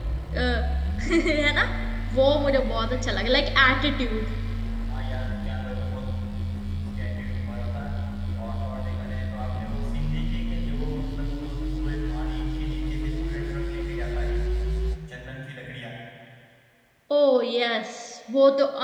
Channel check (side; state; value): both; identical; correlation 1.00